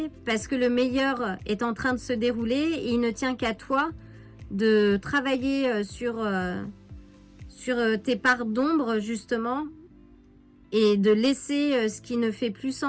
parce que le meilleur est en train de se dérouler et il ne tient qu'à toi de travailler sur tes parts d'ombre justement et de laisser ce qui ne fait plus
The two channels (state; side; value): identical; both; correlation 1.00